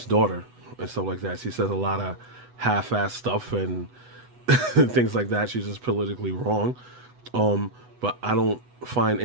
daughter and stuff like that. She says a lot of half-ass stuff and things like that. She's just politically wrong. But I don't find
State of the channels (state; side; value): late; left; 8.1 ms